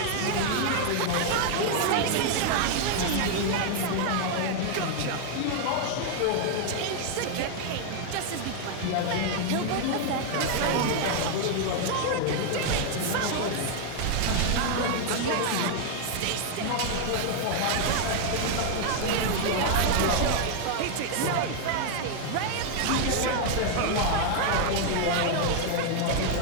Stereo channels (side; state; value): both; different; correlation 0.00